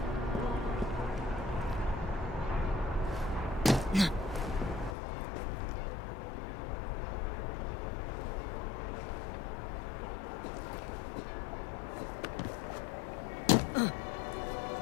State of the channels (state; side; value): drops out; right; at 5.0 s